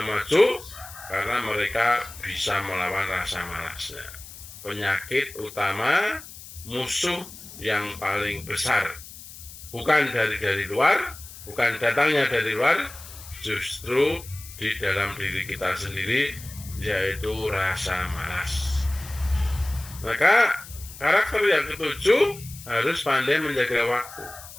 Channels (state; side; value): noise; left; hiss, 16 dB below the sound